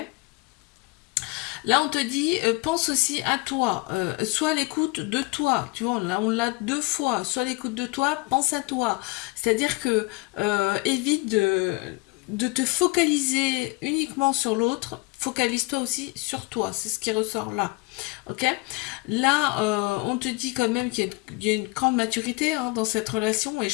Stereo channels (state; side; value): quieter; right; 25.9 dB